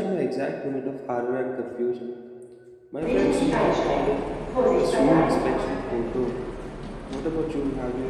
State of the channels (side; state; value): both; identical; correlation 1.00